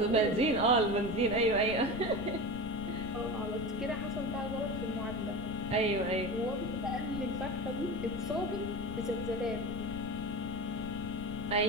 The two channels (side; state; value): left; noise; rumble, 10 dB below the sound